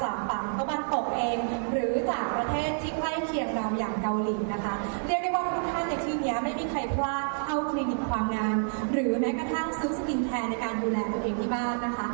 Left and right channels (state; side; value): silent; left; digital silence